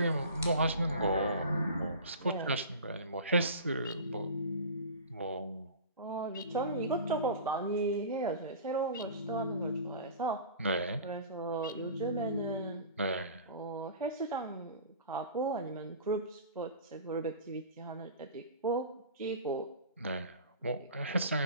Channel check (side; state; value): both; inverted; correlation -0.38